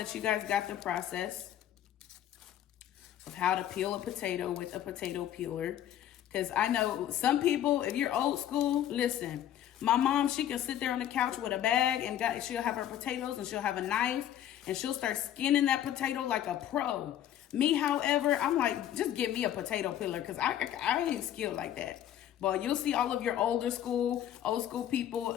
you guys got the process of how to peel a potato with a potato peeler, because I know some people, if you're old school, listen, my mom, she can sit there on the couch with a bag and she'll have her potatoes and she'll have a knife and she'll start skinning that potato like a pro. Me, however, I'm like, just give me a potato peeler because I ain't skilled like that. But you'll see all of your old school people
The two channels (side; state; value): right; quieter; 11.3 dB